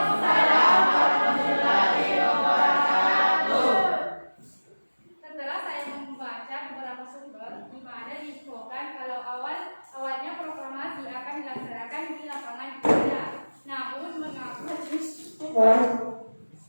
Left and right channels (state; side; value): inverted; both; correlation -1.00